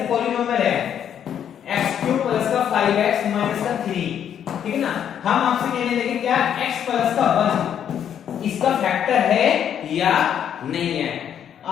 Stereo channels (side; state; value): right; quieter; 9.2 dB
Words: पॉलिनोमियल है x³ प्लस का 5x माइनस का 3, ठीक है ना। हम आपसे कहने लगे क्या x प्लस का 1 इसका फैक्टर है या नहीं है।